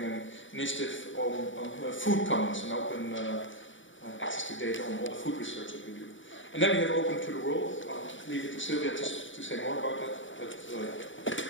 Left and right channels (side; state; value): right; late; 0.56 ms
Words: an initiative on food commons and open access to data on all the food research that we do. And then we have Open to the World. I'll leave it to Sylvia just to say more about that. But